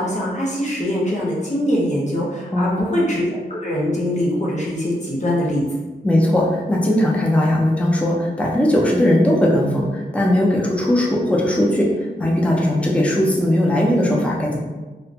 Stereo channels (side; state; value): both; normal; correlation 0.82